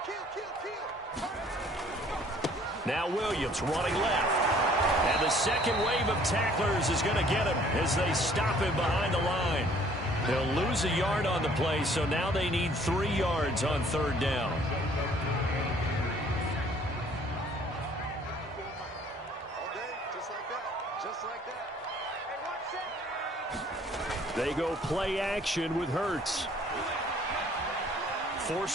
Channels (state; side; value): normal; both; correlation 0.58